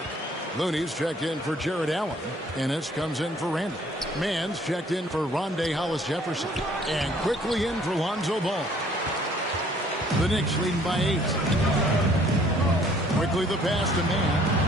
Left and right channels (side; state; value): both; normal; correlation 0.59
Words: Looney's checked in for Jared Allen. Ennis comes in for Randall. Mann's checked in for Rondé Hollis-Jefferson. And quickly in for Lonzo Ball. The Knicks leading by 8. Quickly the pass to Mann.